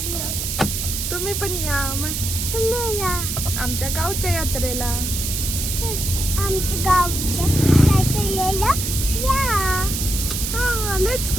तुम्ही पण या मग. तुम्ही या आमच्या गावच्या यात्रेला. आमच्या गावच्या यात्रेला या. हा, let's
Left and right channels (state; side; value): noise; right; hiss, 3 dB below the sound